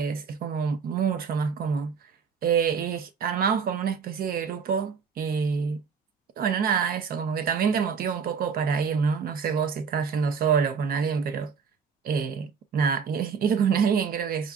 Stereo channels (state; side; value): quieter; left; 6.2 dB